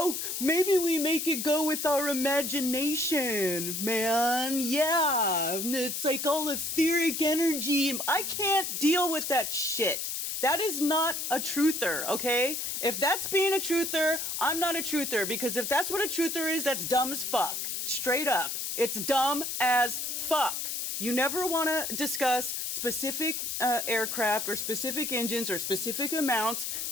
maybe we make it go with our imagination, man. Yeah, it's like all etheric energy. I can't deal with that shit. That is not a truther, okay? If that's being a truther, I'm not a truther, because if that's what a truther is, that's dumb as fuck. Straight up. It's dumb as fuck. You never want to discuss specific aircraft or specific engines or specific amounts.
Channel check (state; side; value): noise; left; hiss, 3 dB below the sound